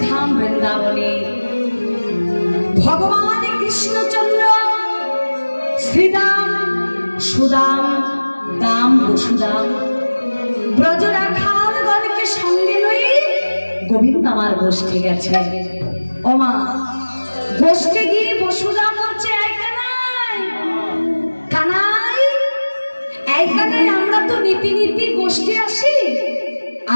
वृंदावने भगवान कृष्णचंद्र श्रीदाम सुदाम दाम वसुदाम ब्रजराखालगणके संगे लये गोविंद आमार गोष्ठे गेছে ও মা গোষ্ঠে গিয়ে বসুদাম বলছে আমরা তো নীতি নীতি গোষ্ঠী আসি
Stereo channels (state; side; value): inverted; both; correlation -1.00